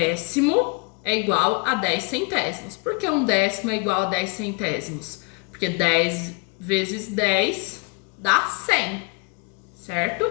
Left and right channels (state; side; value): quieter; right; 31.1 dB